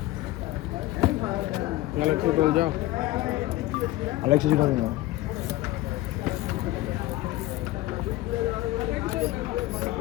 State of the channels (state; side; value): quieter; right; 17.0 dB